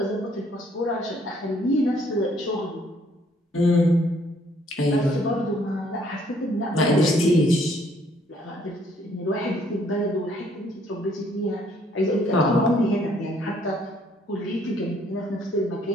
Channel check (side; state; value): both; normal; correlation 0.64